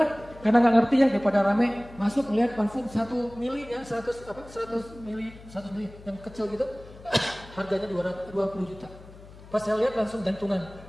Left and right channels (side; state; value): left; noise; hum, 19 dB below the sound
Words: Karena nggak ngerti ya, daripada rame masuk ngeliat parfum 1 mili ya, 100 mili yang kecil gitu. Harganya 20 juta. Pas saya lihat langsung jantungan.